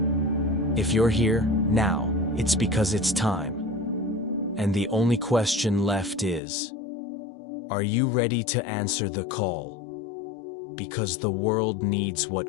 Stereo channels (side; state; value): right; drops out; at 6.4 s